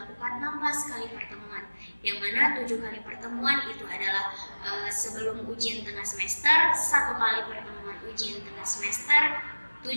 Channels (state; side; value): inverted; both; correlation -1.00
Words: 16 kali pertemuan, yang mana 7 kali pertemuan itu adalah sebelum ujian tengah semester, 1 kali pertemuan ujian tengah semester,